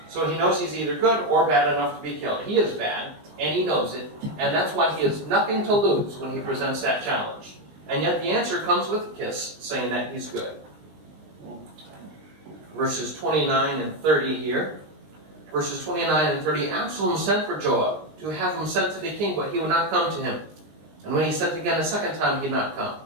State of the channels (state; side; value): late; left; 19 ms